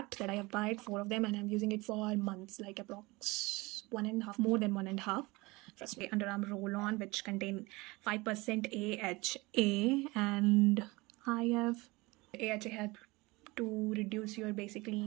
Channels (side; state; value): left; quieter; 23.0 dB